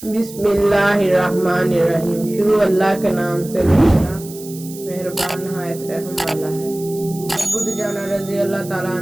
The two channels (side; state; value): right; noise; hiss, 16 dB below the sound